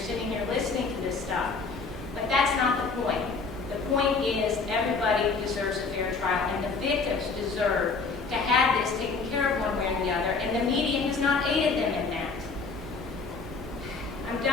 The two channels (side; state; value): right; quieter; 4.5 dB